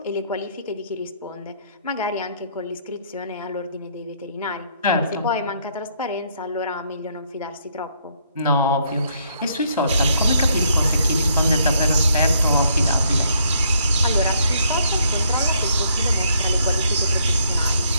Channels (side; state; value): both; inverted; correlation -0.69